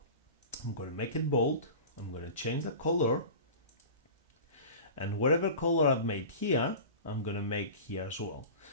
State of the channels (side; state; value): both; inverted; correlation -0.35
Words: I'm going to make it bold. I'm going to change the color. And whatever color I've made here, I'm going to make here as well.